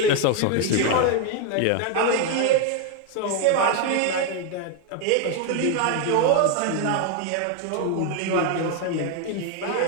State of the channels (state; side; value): different; both; correlation 0.01